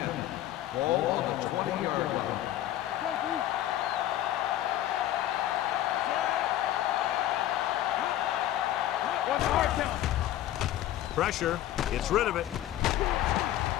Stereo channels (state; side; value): quieter; right; 13.0 dB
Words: Ball on the 20-yard line. Pressure. Gets rid of it.